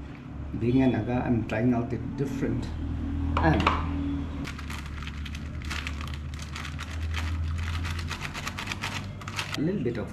being a Naga, I'm trying out it different. And a little bit of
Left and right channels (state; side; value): identical; both; correlation 1.00